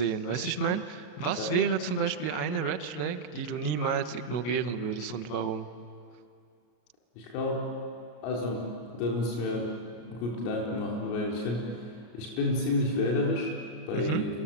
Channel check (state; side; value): late; right; 33 ms